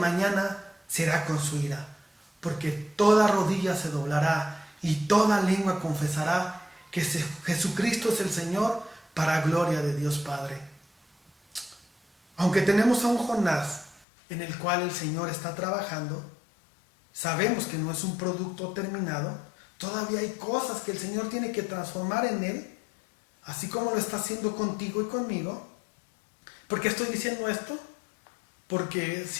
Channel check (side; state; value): right; drops out; at 14.1 s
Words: será con su ira, porque toda rodilla se doblará y toda lengua confesará que Jesucristo es el Señor, para gloria de Dios Padre. Aunque tenemos a un Jonás en el cual el Señor está trabajando, sabemos que no es un producto terminado, todavía hay cosas que el Señor tiene que transformar en él, así como lo está haciendo contigo y conmigo. ¿Por qué estoy diciendo esto? Porque